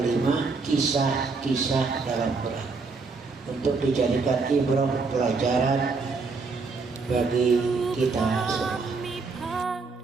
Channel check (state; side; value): quieter; left; 4.3 dB